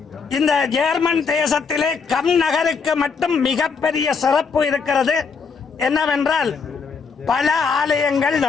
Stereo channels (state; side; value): quieter; right; 5.3 dB